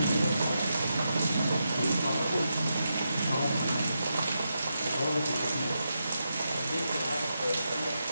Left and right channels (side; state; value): both; inverted; correlation -0.86